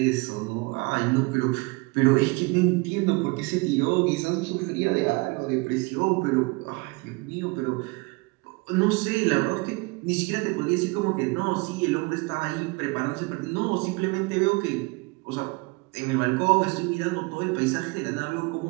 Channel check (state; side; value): quieter; left; 26.8 dB